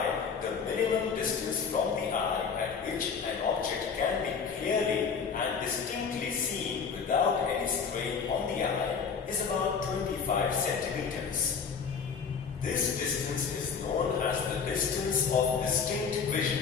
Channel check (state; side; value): quieter; right; 6.0 dB